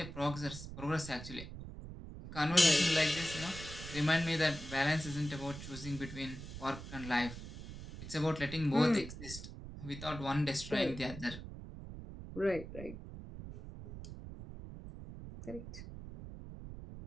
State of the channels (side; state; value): right; noise; rumble, 11 dB below the sound